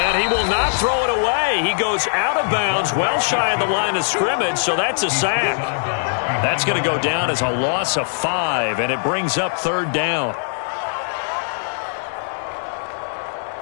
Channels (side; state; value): right; silent; digital silence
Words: he will not throw it away. He goes out of bounds, well shy of the line of scrimmage, so that's a sack. That's going to go down as a loss of 5, and it brings up 3rd down.